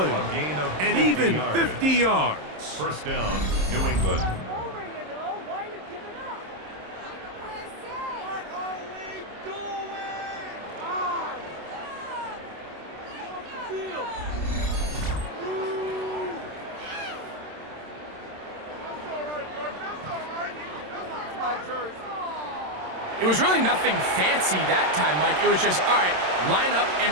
And even 50 yards. First down, New England. It was really nothing fancy that time, Mike. It was just, all right, line up and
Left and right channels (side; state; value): left; late; 27 ms